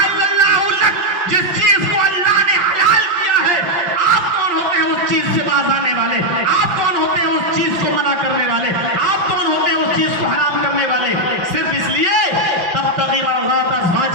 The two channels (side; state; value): left; late; 5.7 ms